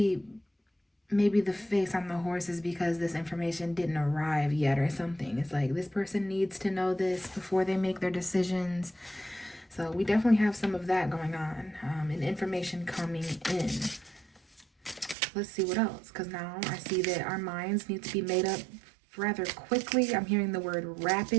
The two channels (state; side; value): drops out; left; at 15.2 s